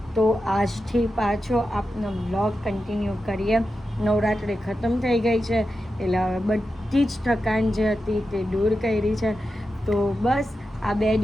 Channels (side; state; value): both; normal; correlation 0.90